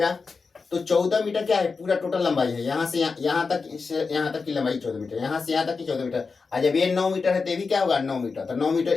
तो 14 मीटर क्या है, पूरा टोटल लंबाई है, यहाँ से यहाँ तक की लंबाई 14 मीटर, यहाँ से यहाँ तक की 14 मीटर। और जब ये 9 मीटर है तो ये भी क्या होगा 9 मीटर, तो 9 मीटर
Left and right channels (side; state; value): right; quieter; 4.7 dB